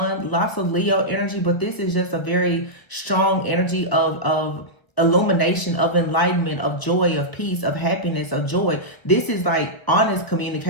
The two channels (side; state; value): right; late; 1.1 ms